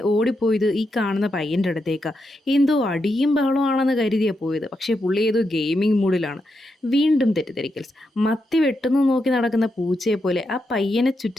ഓടിപ്പോയത് ഈ കാണുന്ന പയ്യൻ്റെ അടുത്തേക്ക്. എന്തോ അടിയും ബഹളമാണെന്ന് കരുതിയാണ് പോയത്. പക്ഷേ പുള്ളി ഏതോ ഗെയിമിംഗ് മൂഡിലാണ്. വീണ്ടും തെറ്റിദ്ധരിക്കൽസ്. മത്തി വെട്ടുന്നു നോക്കി നടക്കുന്ന പൂച്ചയെ പോലെ ആ പയ്യനെ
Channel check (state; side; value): normal; both; correlation 0.84